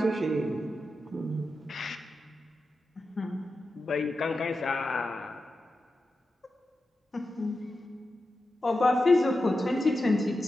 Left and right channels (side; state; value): both; normal; correlation 0.90